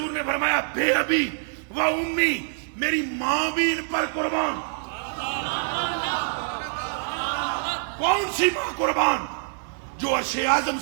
نے فرمایا بے ابی و امی, میری ماں بھی ان پر قربان. کون سی ماں قربان؟ جو عرش اعظم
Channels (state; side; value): silent; left; 61 dB below the other